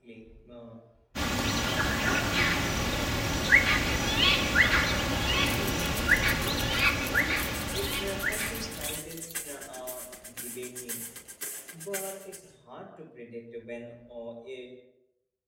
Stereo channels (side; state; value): both; identical; correlation 1.00